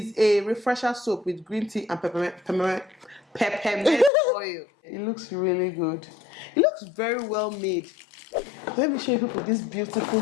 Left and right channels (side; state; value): right; drops out; at 4.1 s